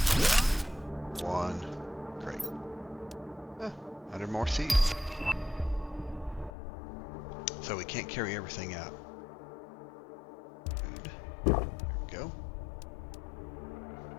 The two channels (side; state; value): right; drops out; at 6.5 s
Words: One. Great. 100 more seeds. So we can't carry everything out. Good. There we go.